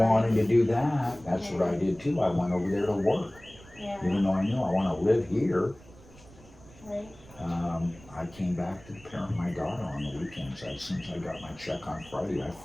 to do that, that's what I did too. I went over there to work. Yeah, Even though I knew I want to live here, right. I came back to parent my daughter on the weekends. As soon as I got my check on Friday, I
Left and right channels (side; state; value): right; noise; rumble, 22 dB below the sound